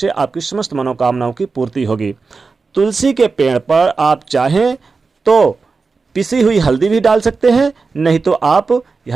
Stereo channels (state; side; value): quieter; left; 4.4 dB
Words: आपकी समस्त मनोकामनाओं की पूर्ति होगी। तुलसी के पेड़ पर आप चाहें तो पिसी हुई हल्दी भी डाल सकते हैं, नहीं तो आप